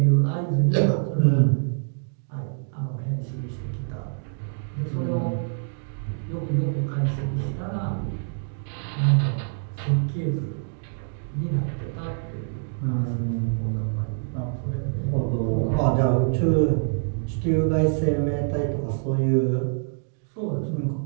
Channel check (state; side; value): silent; left; digital silence